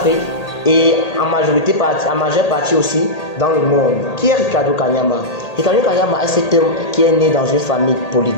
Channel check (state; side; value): late; right; 1.8 ms